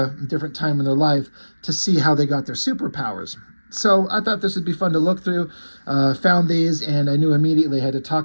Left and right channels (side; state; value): both; inverted; correlation -1.00